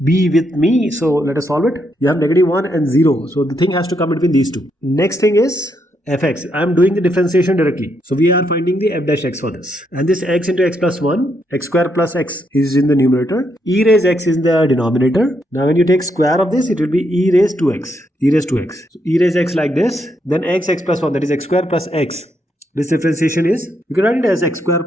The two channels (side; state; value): both; normal; correlation 0.78